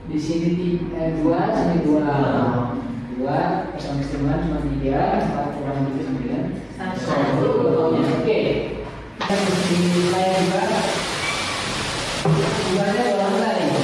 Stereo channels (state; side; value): identical; both; correlation 1.00